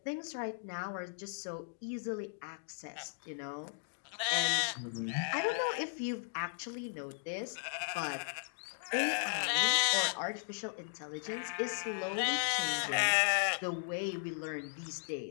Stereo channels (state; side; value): silent; right; digital silence